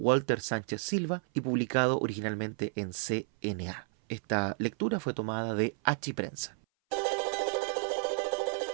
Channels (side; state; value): left; silent; 57 dB below the other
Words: Sánchez Silva y publicado originalmente en CNA. Esta lectura fue tomada de Achiprensa.